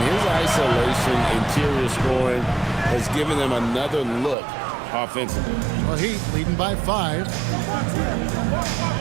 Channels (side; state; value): left; drops out; at 4.4 s